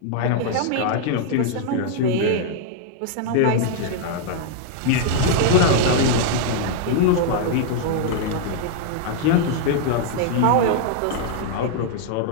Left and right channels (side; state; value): both; different; correlation -0.01